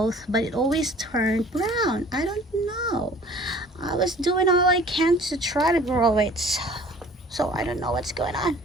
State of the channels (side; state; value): both; normal; correlation 0.50